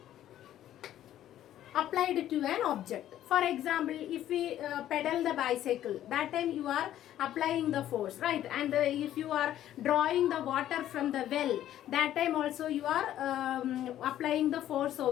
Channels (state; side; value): quieter; right; 12.2 dB